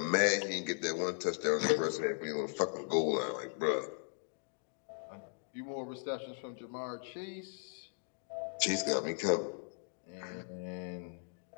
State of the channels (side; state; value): right; silent; 53 dB below the other